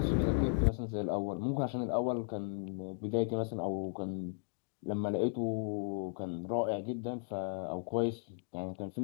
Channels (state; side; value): silent; right; digital silence